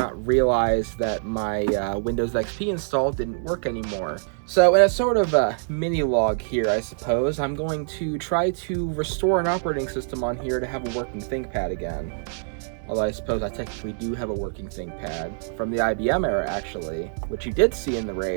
realize that my Windows XP install didn't work anymore. So in a sort of a mini log here, I suppose, I'm going to try to restore an operating system on here to have a working ThinkPad again. Although I suppose I technically do have a working ThinkPad from the IBM era, actually, which you did see in the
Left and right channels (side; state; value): left; silent; digital silence